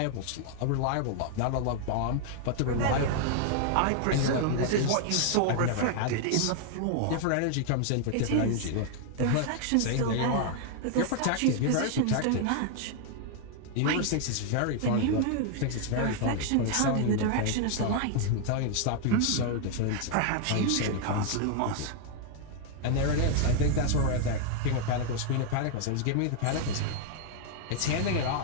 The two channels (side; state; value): both; different; correlation 0.00